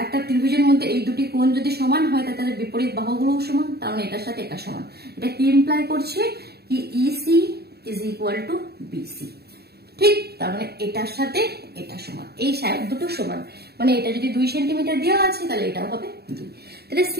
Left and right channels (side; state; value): left; late; 0.47 ms